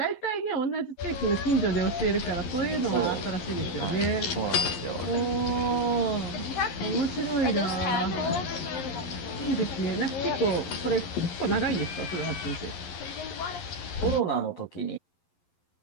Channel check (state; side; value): late; right; 11 ms